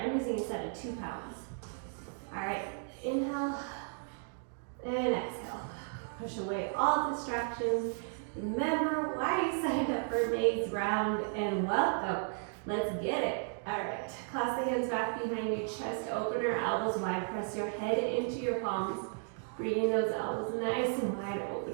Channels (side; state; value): left; silent; 55 dB below the other